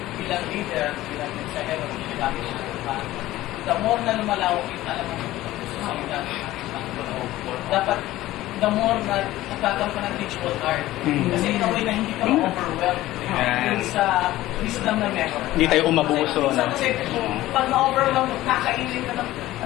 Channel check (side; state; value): right; quieter; 16.0 dB